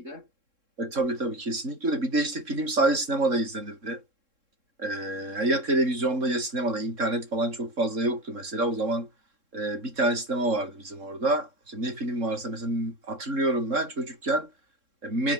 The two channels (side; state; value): left; late; 3.7 ms